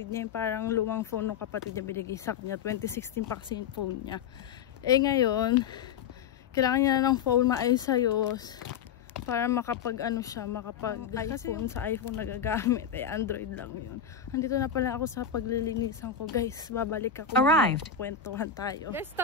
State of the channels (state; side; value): quieter; right; 7.7 dB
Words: niya. Yung parang lumang phone ng kapatid niya binigay sa kanya. 2016 pa kasi yung phone niya. Ngayon, kailangan niya ng phone maayos-ayos para makapag iPhone sa iPhone nagagamit. Android lang yun. Andito na pala ako sa paglilinisan ko. Guys, babalik ako. Arrived. Kwentuhan tayo. Guys,